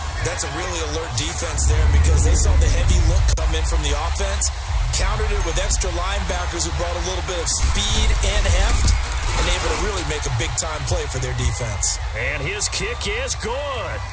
That's a really alert defense there because they saw the heavy look come in from the offense, countered it with extra linebackers who brought a little bit of speed and heft, and able to really make a big-time play for their defense. And his kick is good.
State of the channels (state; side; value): identical; both; correlation 1.00